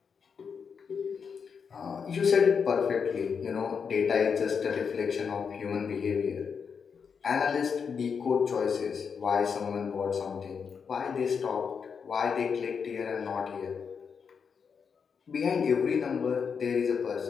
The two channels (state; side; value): quieter; right; 6.3 dB